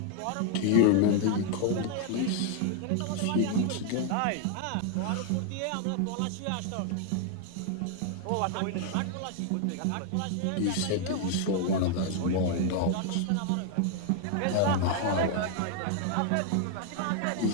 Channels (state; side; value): different; both; correlation 0.00